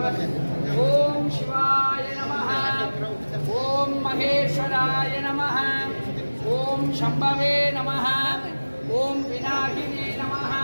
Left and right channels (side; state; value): both; inverted; correlation -1.00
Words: ॐ शिवाय नमः, ॐ महेश्वराय नमः, ॐ शम्भवे नमः, ॐ पिनाकिने नमः,